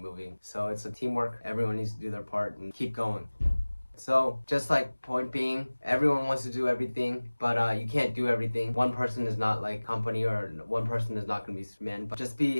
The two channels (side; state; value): both; inverted; correlation -1.00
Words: So it's a teamwork. Everyone needs to do their part and keep going. So just like, point being, everyone wants to do everything, but you can't do everything. One person is not like company, or one person is not going to be Superman. But just be